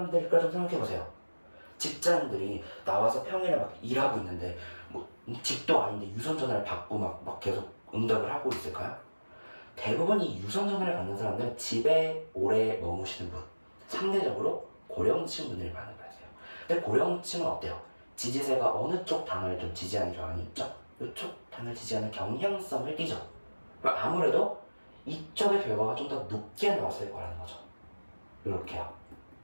좀 생각해보세요. 직장인들이 나와서 평일에 막 일하고 있는데 뭐 집도 아닌데 유선 전화를 받고 막 계속 응답을 하고 있을까요? 대부분 이 유선 전화를 받는 사람들은 집에 오래 머무시는 분, 상대적으로 고령층 분들이 많은 거예요. 근데 고령층은 어때요? 지지세가 어느 쪽 당을 좀 지지하는 경향이 있죠? 이쪽 당을 지지하는 경향성을 띠죠. 그럼 아무래도 이쪽의 결과가 좀 더 높게 나왔을 거라는 거죠. 이렇게요.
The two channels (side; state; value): both; inverted; correlation -1.00